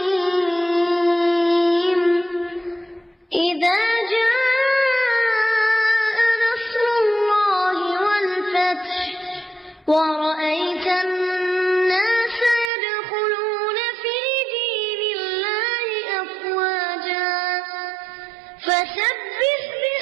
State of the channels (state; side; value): drops out; left; at 12.7 s